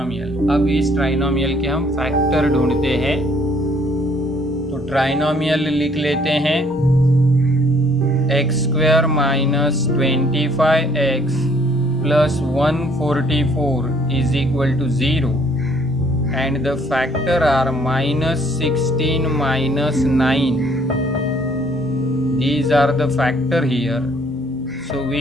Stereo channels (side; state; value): both; normal; correlation 0.62